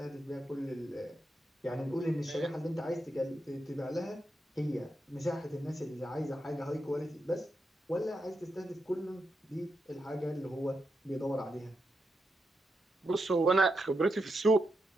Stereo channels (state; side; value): normal; both; correlation 0.85